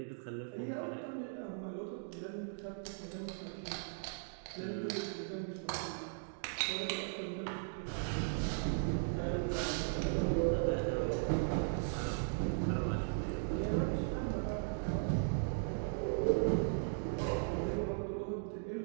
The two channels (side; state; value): left; silent; digital silence